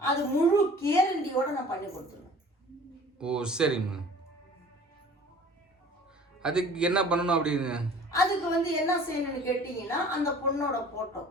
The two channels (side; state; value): both; normal; correlation 0.47